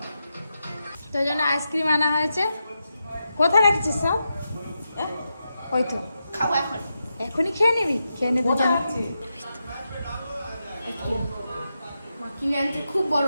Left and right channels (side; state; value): both; inverted; correlation -0.88